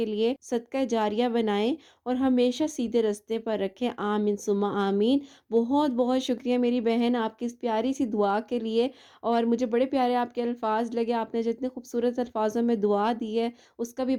لیے صدقہ جاریہ بنائیں اور ہمیشہ سیدھے رستے پر رکھیں، آمین ثم آمین۔ بہت بہت شکریہ میری بہن آپ کی اس پیاری سی دعا کے لیے، اور مجھے بڑے پیارے آپ کے الفاظ لگے، آپ نے جتنے خوبصورت الفاظوں میں دعا دی ہے اس کا بھی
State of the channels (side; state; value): both; identical; correlation 1.00